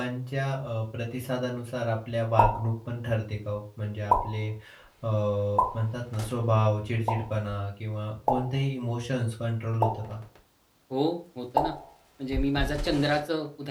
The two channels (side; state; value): both; identical; correlation 1.00